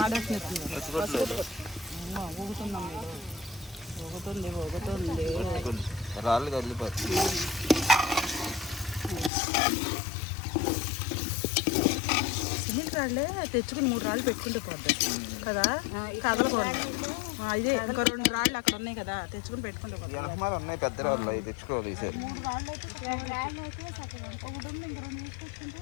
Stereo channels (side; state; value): right; drops out; at 9.3 s